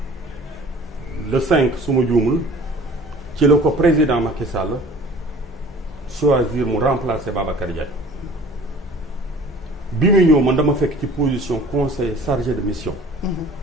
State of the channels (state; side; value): normal; both; correlation 0.48